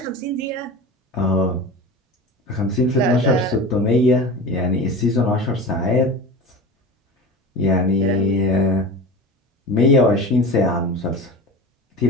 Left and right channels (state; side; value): normal; both; correlation 0.32